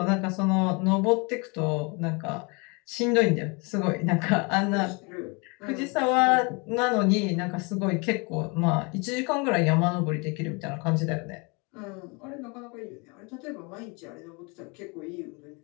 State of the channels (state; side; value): quieter; right; 30.3 dB